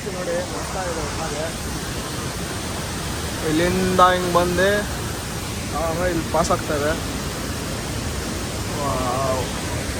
ನೋಡಿ. ಮಸ್ತ ಇದೆ ಒಟ್ಟಾಗೆ. ಇಲ್ಲಿಂದ ಹಿಂಗೆ ಬಂದು ಇಲ್ಲಿ ಪಾಸ್ ಆಗ್ತಾ ಇದೆ.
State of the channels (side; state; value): both; identical; correlation 1.00